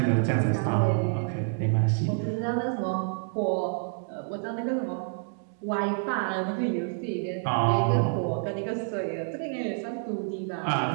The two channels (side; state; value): left; silent; 59 dB below the other